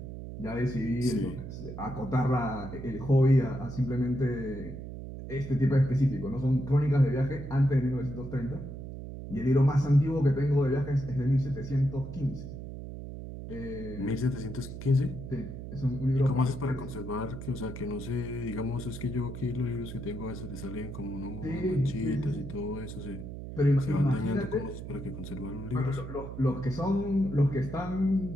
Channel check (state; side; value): noise; right; hum, 9 dB below the sound